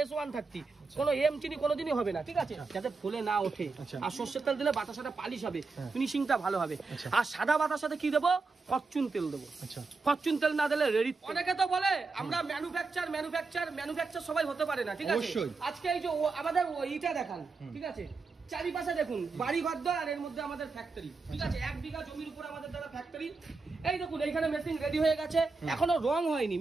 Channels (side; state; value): left; quieter; 4.2 dB